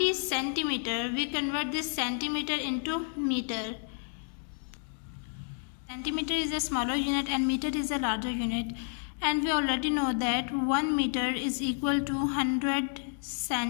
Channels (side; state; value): right; silent; 57 dB below the other